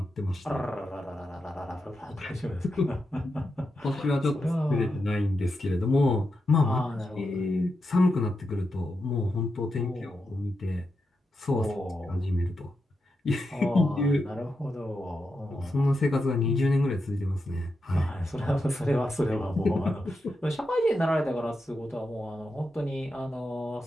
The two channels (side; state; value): both; normal; correlation 0.87